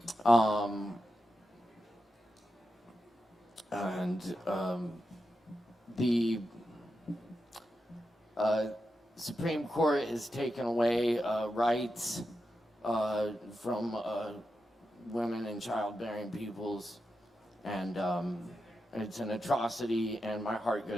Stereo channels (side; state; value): both; normal; correlation 0.89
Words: The Supreme Court has taken away rights from women and childbearing peoples, and it's an atrocity, and my heart